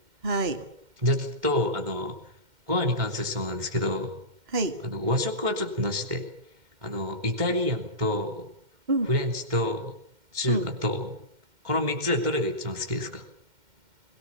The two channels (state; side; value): late; left; 2.1 ms